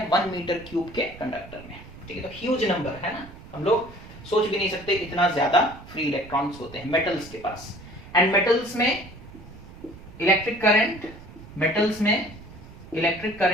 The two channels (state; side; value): noise; right; rumble, 17 dB below the sound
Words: 1 मीटर क्यूब के कंडक्टर में, ठीक है, तो ह्यूज नंबर है ना, हम लोग सोच भी नहीं सकते इतना ज्यादा फ्री इलेक्ट्रॉन्स होते हैं मेटल्स के पास। एंड मेटल्स में इलेक्ट्रिक